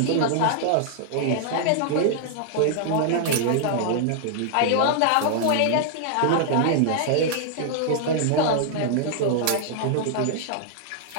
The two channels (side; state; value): both; different; correlation -0.01